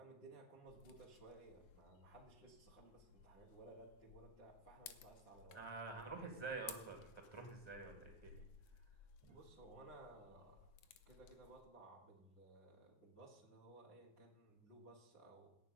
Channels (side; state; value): right; late; 9.6 ms